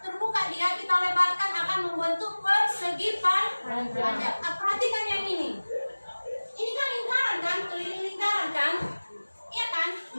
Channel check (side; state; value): both; inverted; correlation -1.00